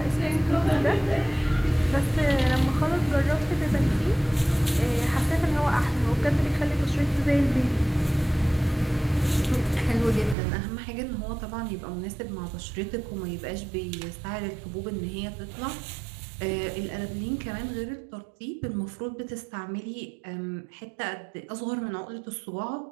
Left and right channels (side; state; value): left; drops out; at 10.4 s